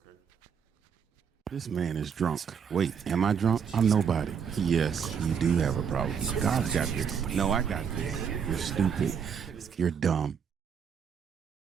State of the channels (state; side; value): quieter; left; 7.0 dB